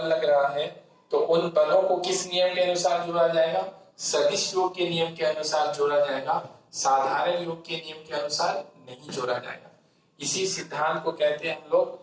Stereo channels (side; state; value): both; identical; correlation 1.00